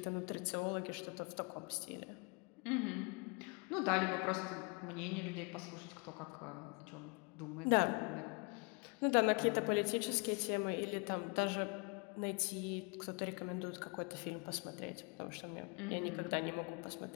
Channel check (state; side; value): quieter; right; 32.3 dB